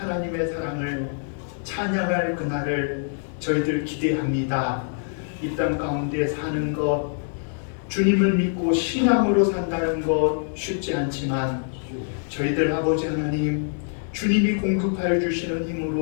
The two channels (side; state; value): right; silent; 62 dB below the other